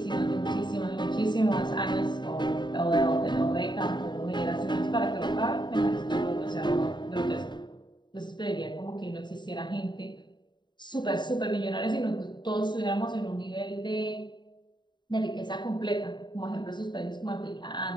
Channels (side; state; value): right; late; 0.22 ms